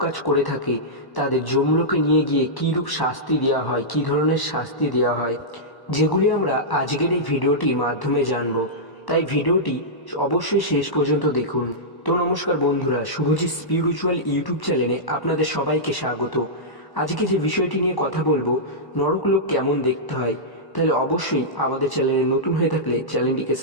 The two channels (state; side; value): late; right; 1.1 ms